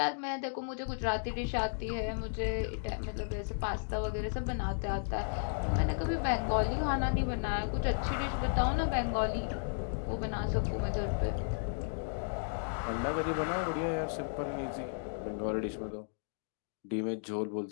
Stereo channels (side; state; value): right; silent; digital silence